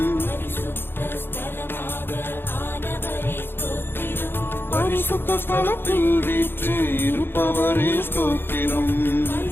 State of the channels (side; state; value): right; late; 0.10 ms